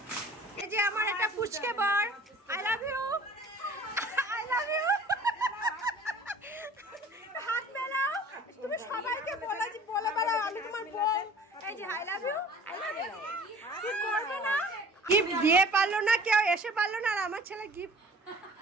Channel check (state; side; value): normal; both; correlation 0.47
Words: এই যে আমার একটা পুচকে বর আই লাভ ইউ হাত মেলাও তুমি সবাইকে বলে বেড়াও আমি তোমার বোন এই যে আই লাভ ইউ কি করবে না গিফট দিয়ে পারলো না কেউ এসে পারলো না আর আমার ছেলে গিফট